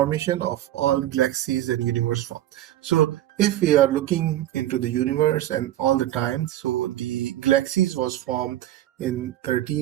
of all galaxies and universe form. So if we are looking into the universe and all the time, so the galaxies was formed in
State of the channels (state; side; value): quieter; left; 13.5 dB